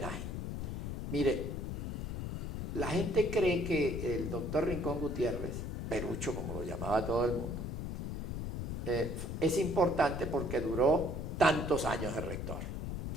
Mire, la gente cree que el doctor Rincón Gutiérrez, Perucho como lo llamaba todo el mundo, es importante porque duró tantos años de rector.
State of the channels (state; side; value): noise; left; rumble, 4 dB below the sound